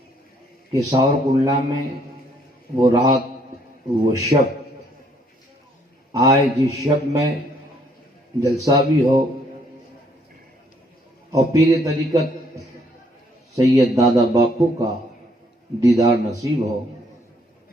کہ ساورکنڈلا میں وہ رات وہ شب آئے جس شب میں جلسہ بھی ہو اور پیر طریقت سید دادا باپو کا دیدار نصیب ہو.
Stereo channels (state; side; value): normal; both; correlation 0.67